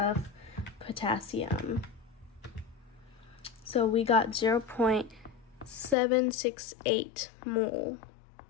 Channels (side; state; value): right; drops out; at 6.0 s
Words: potassium. So we got 0.768 mole